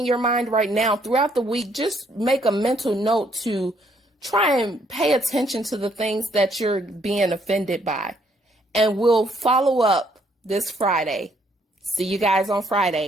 your mind right now, throughout the week, just make a mental note to try and pay attention to the things that you're being offended by. And we'll follow up this Friday. See you guys on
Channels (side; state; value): both; normal; correlation 0.69